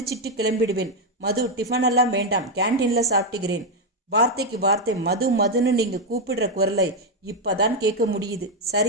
கிளம்பிடுவேன். மது, டிஃபன் எல்லாம் வேண்டாம், கேன்டீன்ல சாப்பிட்டுக்கிறேன். வார்த்தைக்கு வார்த்தை மது மதுன்னு நீங்க கூப்பிடுற குரலை இப்பதான் கேட்க முடியுது.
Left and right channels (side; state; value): both; normal; correlation 0.03